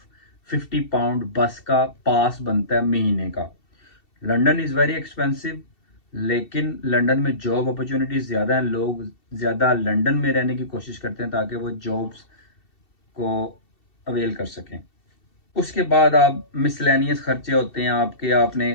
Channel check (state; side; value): late; right; 2.7 ms